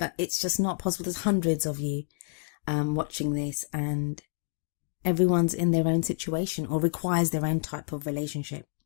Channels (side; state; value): right; silent; digital silence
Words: it's just not possible. There's hundreds of you watching this, and everyone's in their own situation or requires their own type of relationship.